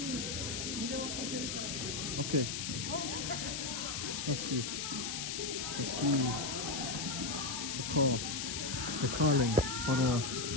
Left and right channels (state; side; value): noise; left; hiss, 3 dB below the sound